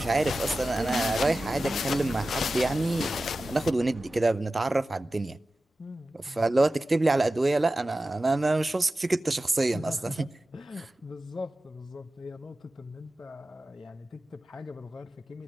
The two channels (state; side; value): normal; both; correlation 0.95